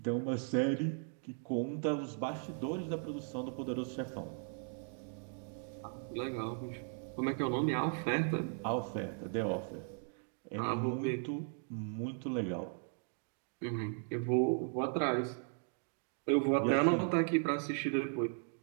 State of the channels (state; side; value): silent; left; 53 dB below the other